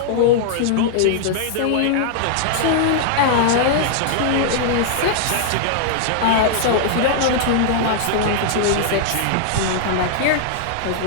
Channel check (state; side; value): different; both; correlation -0.01